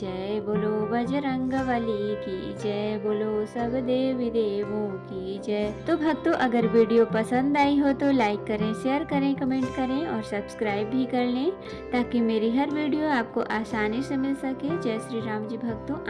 बोलो बजरंगबली की जय, बोलो सब देवी देवों की जय। तो भक्तों अगर वीडियो पसंद आई हो तो लाइक करें, शेयर करें, कमेंट करें और सब्सक्राइब भी कर लें ताकि मेरी हर वीडियो आपको आसानी से मिल सके। जय श्री राम जी भक्तों,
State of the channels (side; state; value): both; identical; correlation 1.00